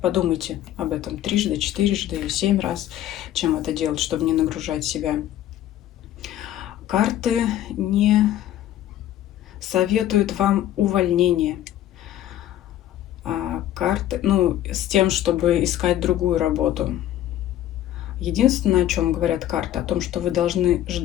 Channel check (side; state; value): right; quieter; 12.5 dB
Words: подумайте об этом трижды, четырежды, 7 раз, чем это делать, чтобы не нагружать себя. Карты не советуют вам увольнение. Карты, с тем, чтобы искать другую работу. Единственное, о чем говорят карты, о том, что вы должны